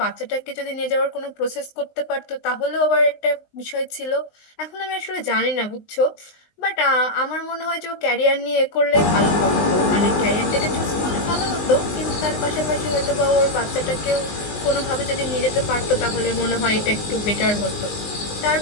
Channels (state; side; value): late; right; 19 ms